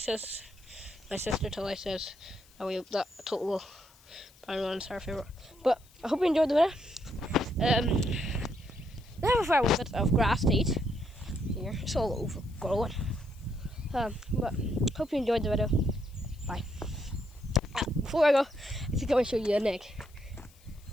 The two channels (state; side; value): noise; left; hiss, 28 dB below the sound